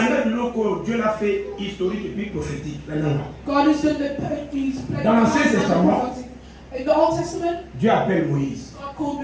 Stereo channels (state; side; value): identical; both; correlation 1.00